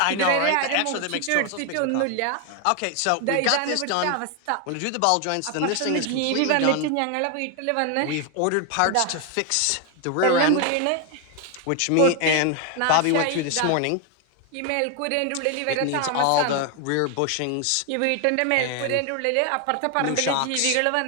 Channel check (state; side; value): different; both; correlation 0.01